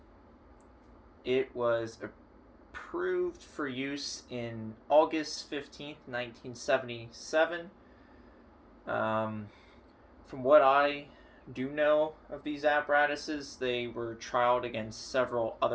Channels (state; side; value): identical; both; correlation 1.00